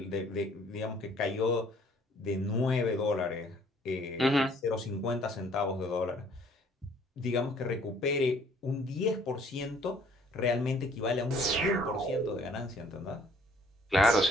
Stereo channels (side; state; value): both; normal; correlation 0.59